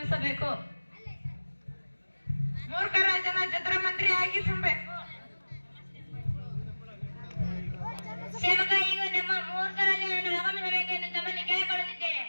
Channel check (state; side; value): inverted; both; correlation -1.00